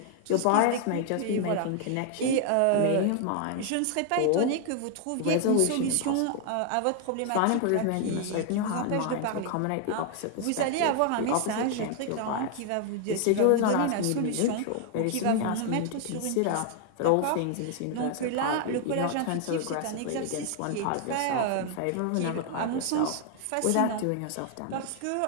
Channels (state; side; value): different; both; correlation 0.00